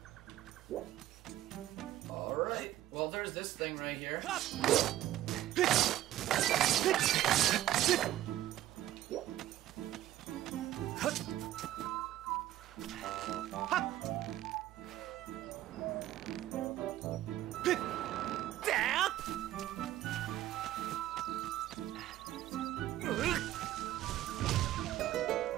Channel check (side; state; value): left; quieter; 13.8 dB